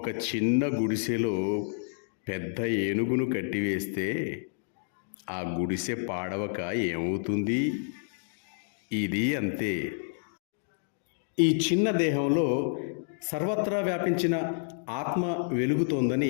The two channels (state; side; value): silent; right; digital silence